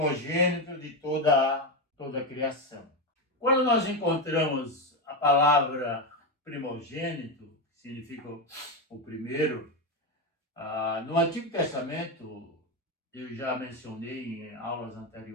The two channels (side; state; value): both; normal; correlation 0.11